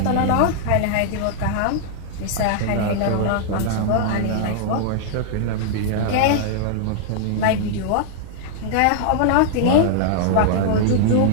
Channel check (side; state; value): both; different; correlation -0.01